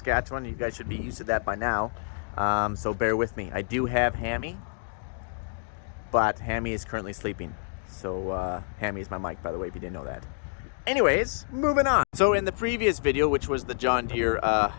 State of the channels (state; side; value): silent; right; digital silence